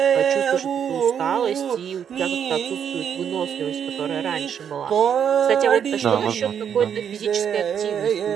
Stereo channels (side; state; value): left; quieter; 8.2 dB